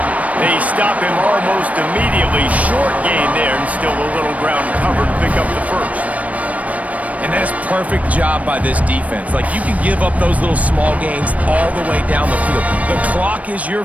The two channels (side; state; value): left; late; 0.068 ms